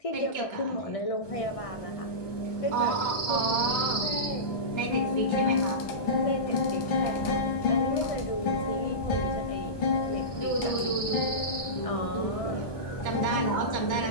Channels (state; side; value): late; right; 1.2 ms